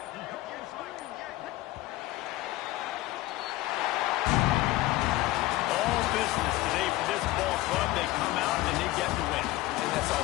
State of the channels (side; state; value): right; quieter; 17.5 dB